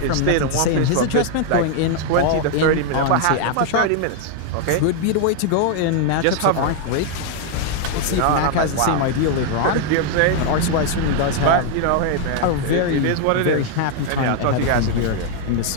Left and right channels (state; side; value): different; both; correlation 0.00